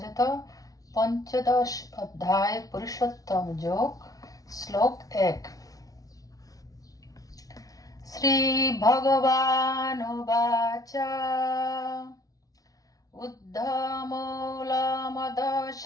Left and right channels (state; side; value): late; right; 0.18 ms